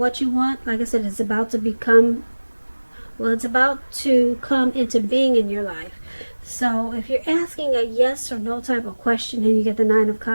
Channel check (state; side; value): inverted; both; correlation -1.00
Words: you want, like I said, it's about to become, it's about to come into being in your life. So if you're asking a yes or no type of question and you get the Nine of